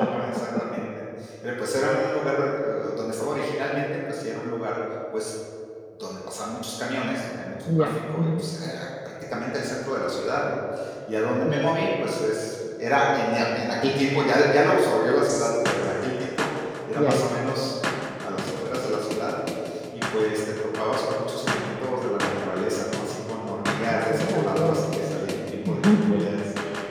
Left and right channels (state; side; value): identical; both; correlation 1.00